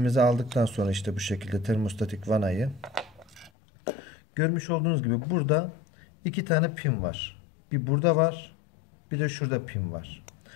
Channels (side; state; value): right; drops out; at 3.5 s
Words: aldıktan sonra işte bu şekilde termostatik vanayı görmüş olduğunuz gibi burada iki tane pin var. Bir burada var, bir de şurada pin var.